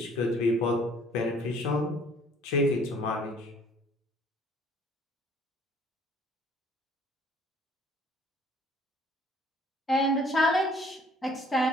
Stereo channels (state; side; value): normal; both; correlation 0.57